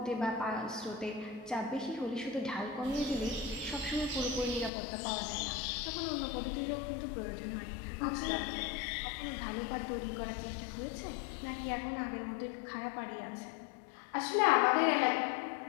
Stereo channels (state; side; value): drops out; right; at 4.7 s